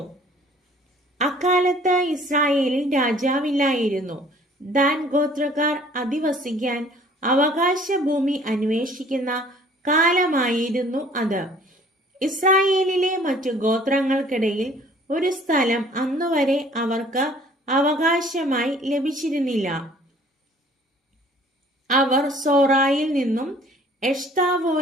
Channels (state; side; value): normal; both; correlation 0.54